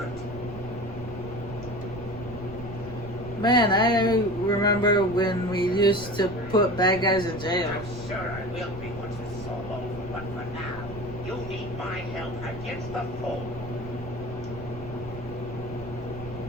Man, I remember when we used to put bad guys in jail. I'm sure I will be once this is all over, but for now, you need my help against the foe.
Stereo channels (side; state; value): right; noise; rumble, 12 dB below the sound